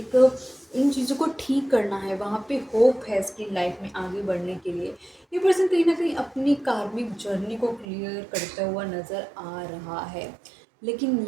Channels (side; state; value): left; drops out; at 7.9 s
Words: इन चीज़ों को ठीक करना है, वहाँ पे होप है इसकी लाइफ में आगे बढ़ने के लिए। ये पर्सन कहीं ना कहीं अपनी कार्मिक जर्नी को क्लियर करता हुआ नज़र आ रहा है, लेकिन